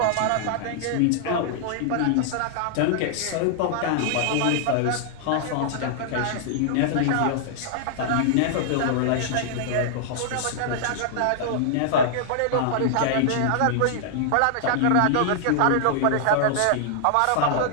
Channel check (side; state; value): both; different; correlation -0.01